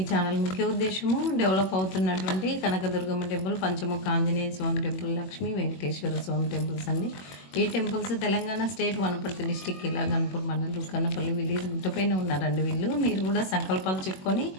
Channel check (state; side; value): late; right; 21 ms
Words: ఛానల్ ముఖ్య ఉద్దేశము డెవలప్ అవుతున్నటువంటి Kanakadurgamma temple, Panchamukha Anjaneya Swamy temple, Lakshmi Venkateswara Swamy temples అండి. ఈ temples Telangana state Wanaparthy district Killa Ghanpur మండలం కన్నపల్లి విలేజ్ గుట్టపైన ఉన్నారండి వీళ్ళు. మీరు కూడా సంకల్పాలు చెప్పుకొని